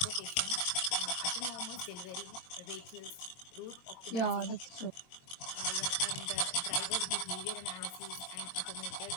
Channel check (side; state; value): right; late; 22 ms